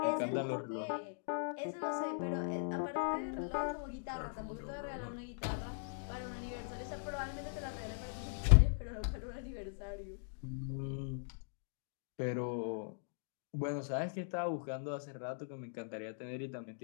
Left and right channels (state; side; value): silent; right; digital silence